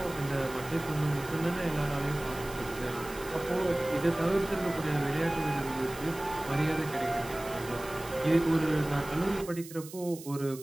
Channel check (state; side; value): noise; right; hiss, 16 dB below the sound